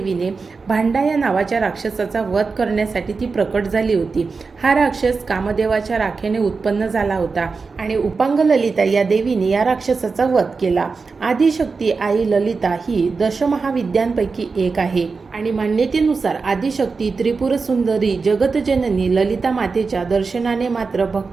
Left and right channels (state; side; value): quieter; left; 4.6 dB